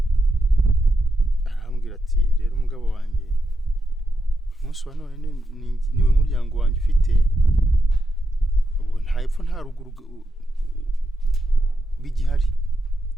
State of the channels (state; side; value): normal; both; correlation 0.85